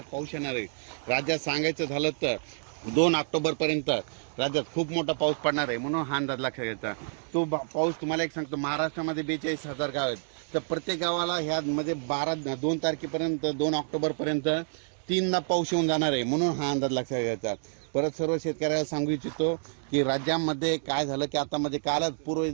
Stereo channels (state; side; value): silent; left; digital silence